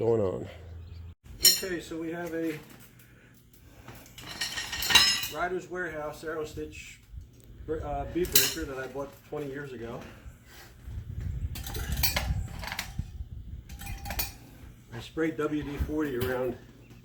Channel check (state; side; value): identical; both; correlation 1.00